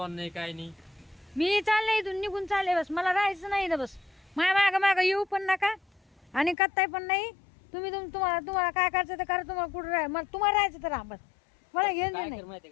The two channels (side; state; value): right; drops out; at 6.6 s